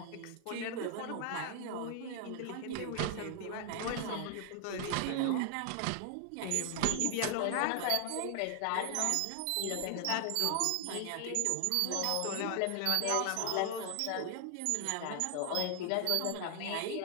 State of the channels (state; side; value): different; both; correlation 0.00